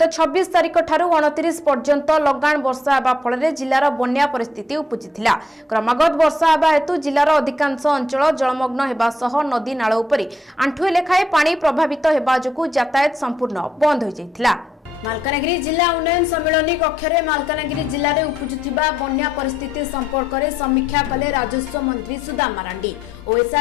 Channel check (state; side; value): normal; both; correlation 0.77